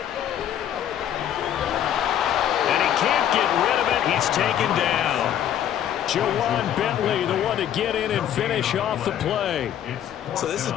And he can't get rid of it. He's taken down. Jawan Bentley, the one to get in and finish off the play. So this has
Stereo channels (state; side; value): quieter; right; 10.4 dB